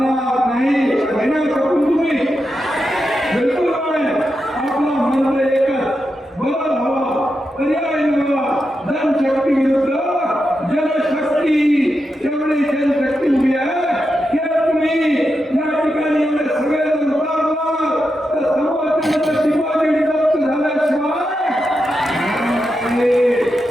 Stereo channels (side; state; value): both; normal; correlation 0.87